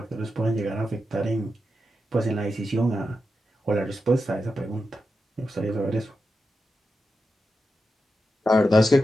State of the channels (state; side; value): normal; both; correlation 0.89